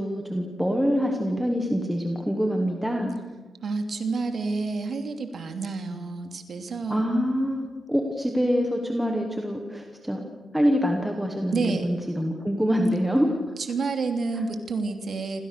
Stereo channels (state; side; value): normal; both; correlation 0.91